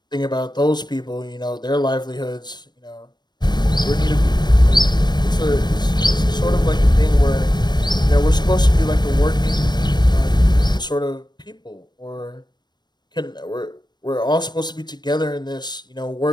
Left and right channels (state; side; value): late; right; 0.21 ms